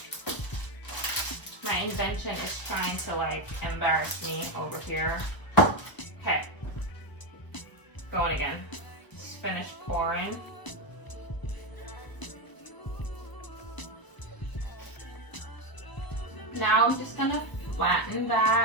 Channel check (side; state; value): right; late; 1.0 ms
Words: My invention is trying to like embarrass me over here. Okay, going again. Just finish pouring. Now I'm just gonna flatten